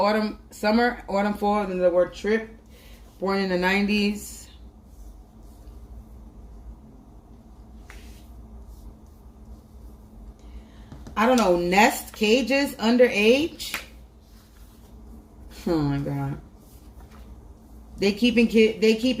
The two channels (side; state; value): both; identical; correlation 1.00